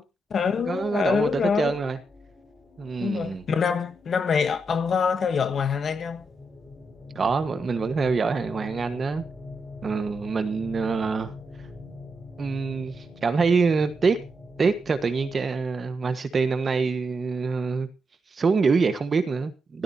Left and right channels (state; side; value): normal; both; correlation 0.83